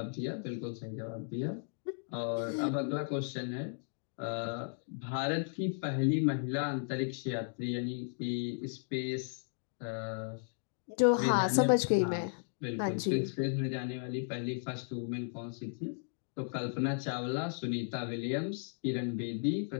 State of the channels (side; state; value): right; silent; digital silence